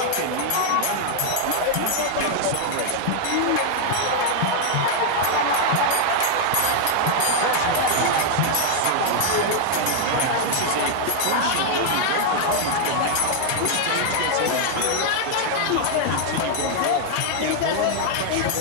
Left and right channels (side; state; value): both; different; correlation 0.00